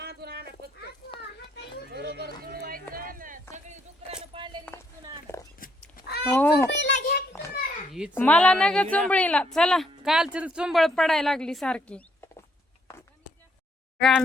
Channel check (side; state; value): both; normal; correlation 0.71